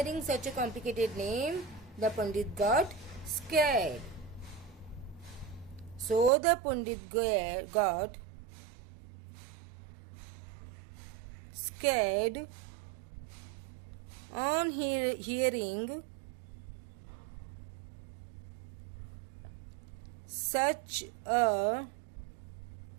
such a complicated name, the Pandit got scared. So the Pandit got scared on hearing such a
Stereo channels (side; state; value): left; drops out; at 6.3 s